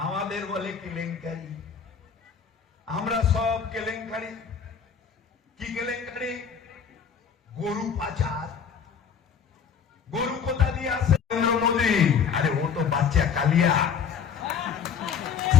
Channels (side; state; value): right; quieter; 7.0 dB